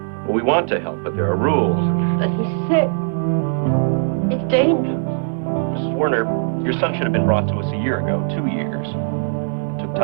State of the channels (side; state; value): left; silent; digital silence